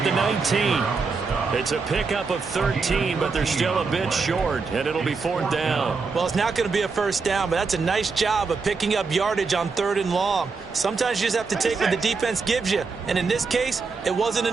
the 19. It's a pickup of 13, but they're still a bit short, and it'll be 4th down. Well, it's not going to be a first down, but that's a nice job of picking up yardage on 3rd and long. Sometimes you just have to take what the defense gives you, and in this case, it wasn't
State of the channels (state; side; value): quieter; left; 4.6 dB